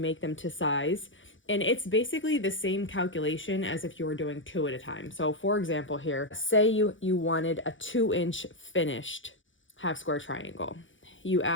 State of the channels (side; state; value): right; late; 0.56 ms